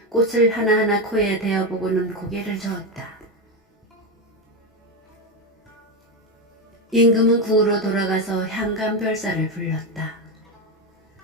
꽃을 하나하나 코에 대어보고는 고개를 저었다. 임금은 궁으로 돌아가서 향감별사를 불렀다.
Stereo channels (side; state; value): both; normal; correlation 0.12